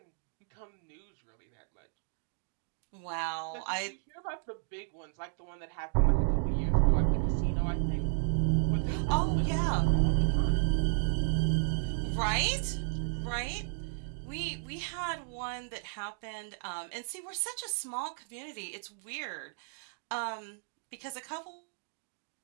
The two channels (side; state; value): left; silent; digital silence